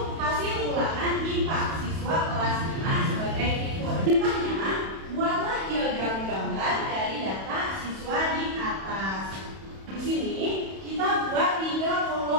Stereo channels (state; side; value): late; left; 31 ms